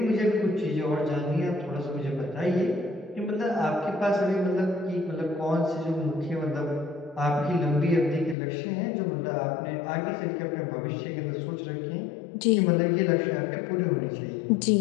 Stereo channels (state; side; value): drops out; right; at 8.3 s